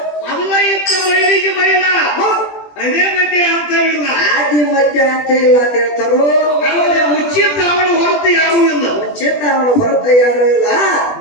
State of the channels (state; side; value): late; right; 20 ms